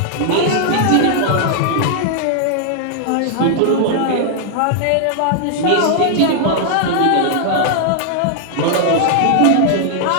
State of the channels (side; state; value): both; different; correlation 0.00